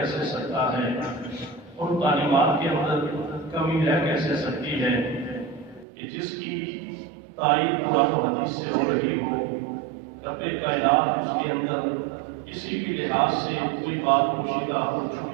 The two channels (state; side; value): drops out; left; at 5.9 s